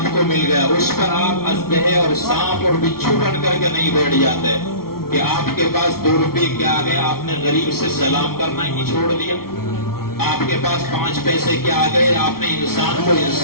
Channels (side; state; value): right; late; 0.94 ms